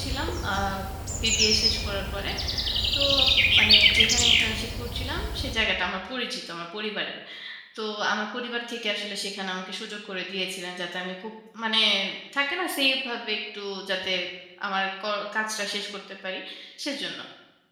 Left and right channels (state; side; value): identical; both; correlation 1.00